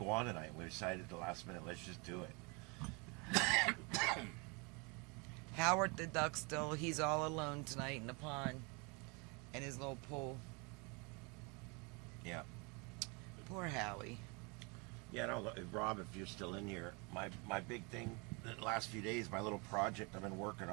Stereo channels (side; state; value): left; quieter; 30.5 dB